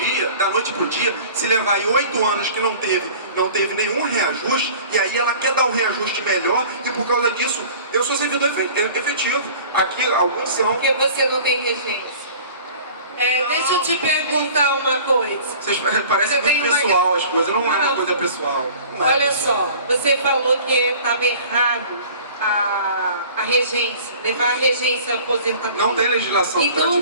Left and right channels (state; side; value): inverted; both; correlation -0.45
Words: dia, se levar aí 8 anos que não teve nenhum reajuste, e aí ela quer dar um reajuste melhor, e por causa disso, eu sou servidor efetivo. Aqui, alguns são. Porque você não tem regência. Deixa eu te perguntar uma coisa. Parece muito pessoal as coisas, não é uma coisa pessoal. Olha só, você falou que estava errado a regência, levar a regência à aposentadoria. Não tem legislação. Então o